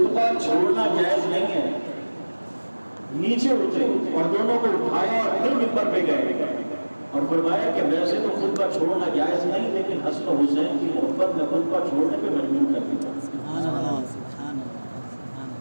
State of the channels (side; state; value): both; inverted; correlation -1.00